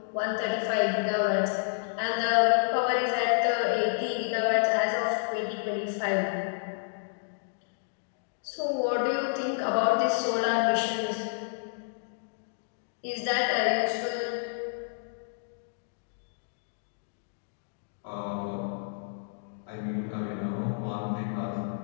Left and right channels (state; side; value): silent; right; digital silence